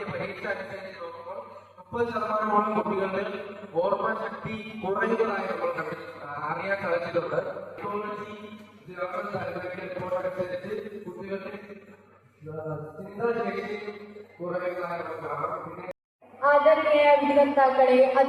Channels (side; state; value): both; identical; correlation 1.00